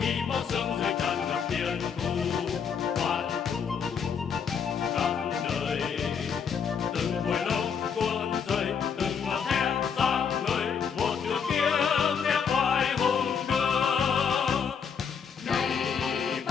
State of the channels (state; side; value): quieter; right; 6.8 dB